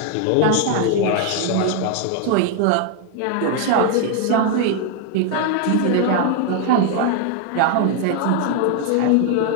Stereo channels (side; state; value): both; different; correlation 0.00